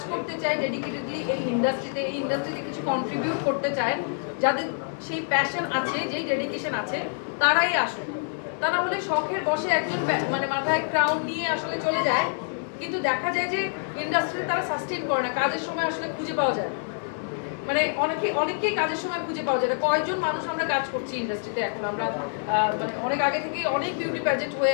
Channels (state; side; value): silent; right; digital silence